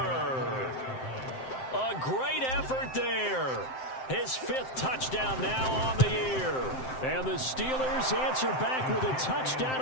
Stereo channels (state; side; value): late; right; 7.7 ms